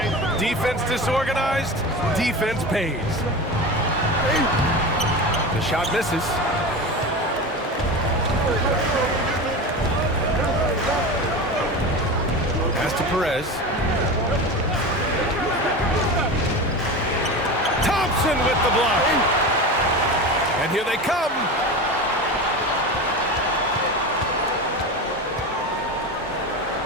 Defense disorganized, defense pays. The shot misses. Pass to Perez. Thompson with the block. And here they come.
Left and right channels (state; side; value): normal; both; correlation 0.27